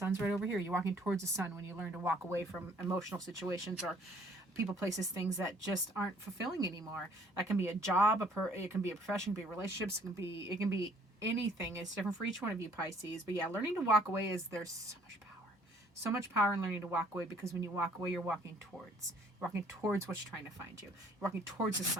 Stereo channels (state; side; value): normal; both; correlation 0.60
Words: right over here. You're walking towards the sun when you learn to walk away from emotional situations or people, places, things that just aren't fulfilling anymore. That can be a job, it can be a profession, it can be relationships, it can be anything. It's different for each one of you, Pisces. But yeah, learning to walk away there's so much power in learning to walk away, because when you walk away, you're walking towards what's trying to find you. You're walking towards the